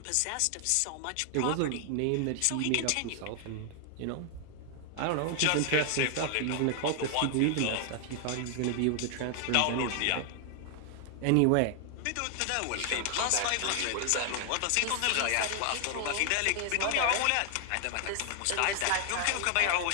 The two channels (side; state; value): both; different; correlation 0.00